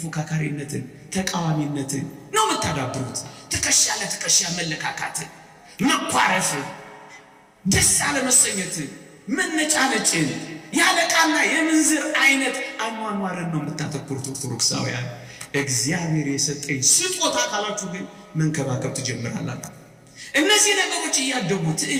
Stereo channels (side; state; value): both; identical; correlation 1.00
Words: ተቃዋሚነትን ነው የምታዳብሩት። ትከሻ ለትከሻ መለካካትን፣ መኳረፍን፣ ደስ አለመሰኘትን፣ መነጫነጭን፣ ያለቃና የምንዝር አይነት አኗኗርን ነው የምታተኩሩት ኦርቶዶክሳውያን። እግዚአብሔር የሰጠኝ ስጦታ ካላችሁ ግን መንከባከብ ትጀምራላችሁ። እነዚህ ነገሮች እያደጉ